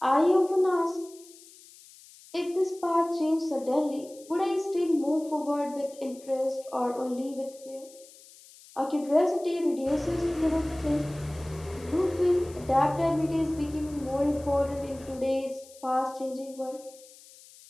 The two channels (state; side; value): noise; left; hiss, 22 dB below the sound